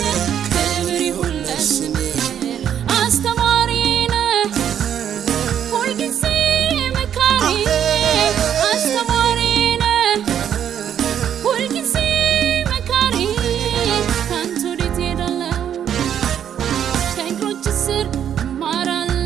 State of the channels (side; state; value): left; quieter; 9.3 dB